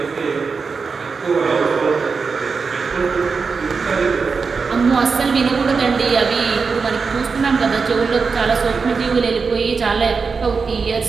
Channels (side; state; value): left; quieter; 5.0 dB